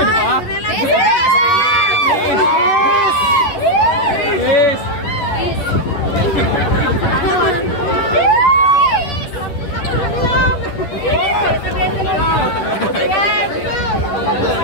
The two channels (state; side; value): late; right; 10 ms